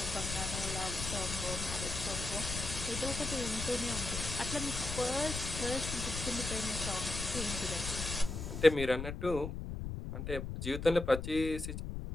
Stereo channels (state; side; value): noise; left; rumble, 5 dB below the sound